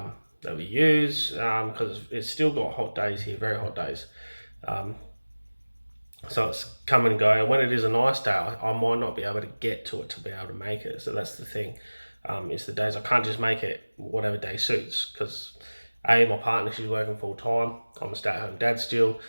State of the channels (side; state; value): both; inverted; correlation -1.00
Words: we use, because it's still got hot days here, very hot days. So it's come and go. And when it is a nice day, I might not be able to get to it to be able to make it. So that's the thing. It's the days I can't just make it whatever day suits, because my partner, she's working full time. I'm a stay-at-home dad still,